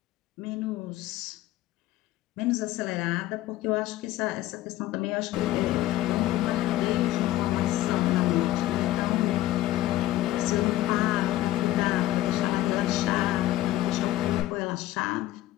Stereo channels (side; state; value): right; quieter; 15.3 dB